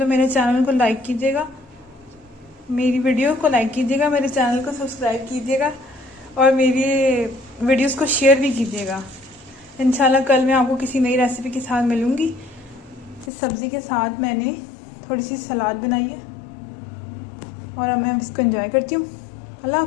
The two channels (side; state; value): right; drops out; at 13.3 s